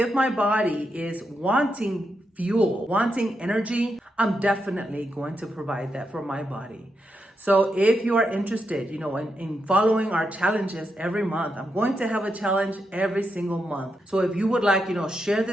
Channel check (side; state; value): both; normal; correlation 0.84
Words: my body is wanting fuel, wanting energy, I'm definitely going to provide that for my body. So if you are interested, in following our challenges every month, I'm going to have a challenge every single month. So if you would like, share